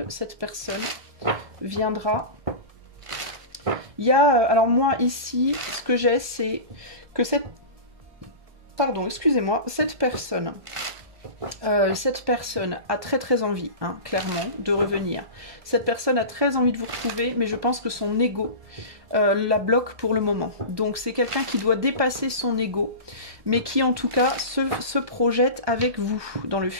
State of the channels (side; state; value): left; late; 1.2 ms